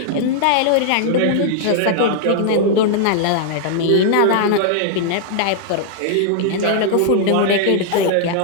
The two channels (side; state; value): both; different; correlation -0.01